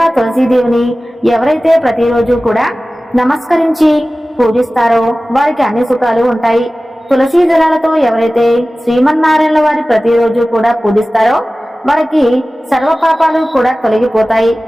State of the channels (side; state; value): both; normal; correlation 0.97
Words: తులసీదేవిని ఎవరైతే ప్రతిరోజు కూడా నమస్కరించి పూజిస్తారో వారికి అన్ని సుఖాలు ఉంటాయి. తులసీ దళాలతో ఎవరైతే శ్రీమన్నారాయణ వారి ప్రతిరోజు కూడా పూజిస్తారో వారికి సర్వ పాపాలు కూడా తొలగిపోతాయి,